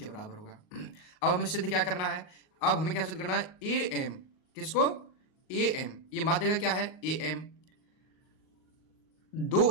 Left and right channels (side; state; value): right; late; 38 ms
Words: बराबर होगा। अब हमें सिद्ध क्या करना है, अब हमें क्या सिद्ध करना है, ए एम किसको, ए एम ये माध्यिका क्या है, ए एम